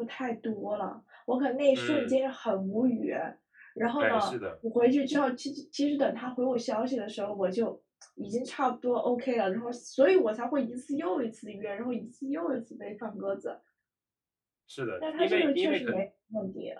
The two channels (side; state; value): both; identical; correlation 1.00